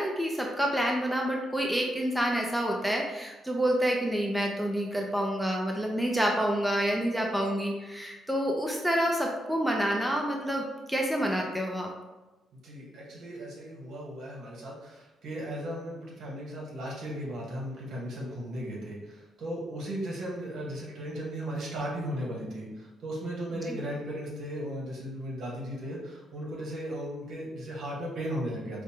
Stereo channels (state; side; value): normal; both; correlation 0.83